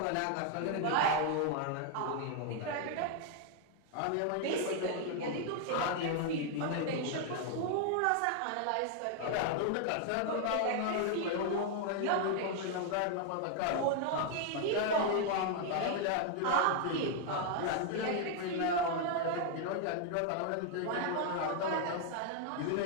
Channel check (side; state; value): both; different; correlation 0.00